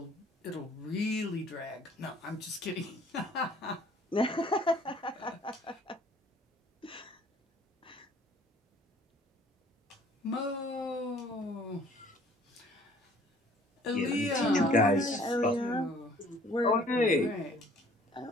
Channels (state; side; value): normal; both; correlation 0.56